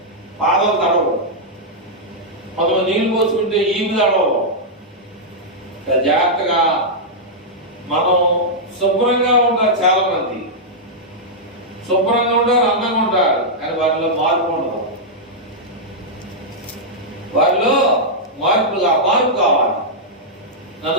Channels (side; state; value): both; normal; correlation -0.07